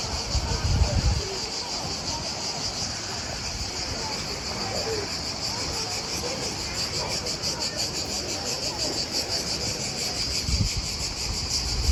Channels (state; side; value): identical; both; correlation 1.00